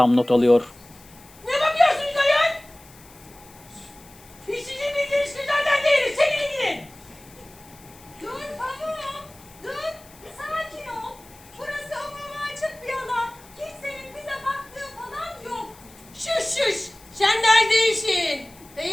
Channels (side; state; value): left; noise; hiss, 23 dB below the sound